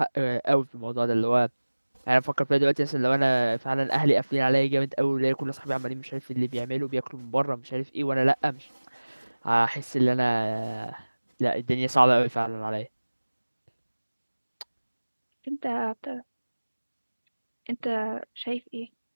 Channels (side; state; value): both; inverted; correlation -1.00